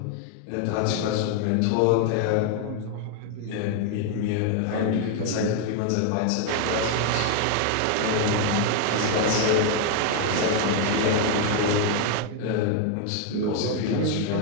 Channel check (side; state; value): both; different; correlation 0.00